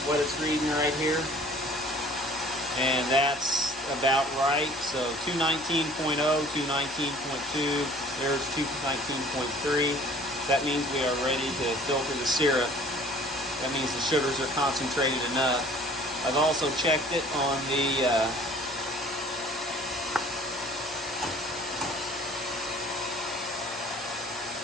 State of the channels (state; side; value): normal; both; correlation 0.51